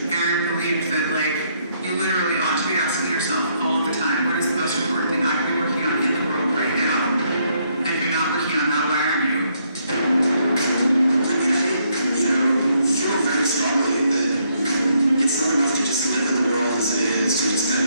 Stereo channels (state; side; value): inverted; both; correlation -0.72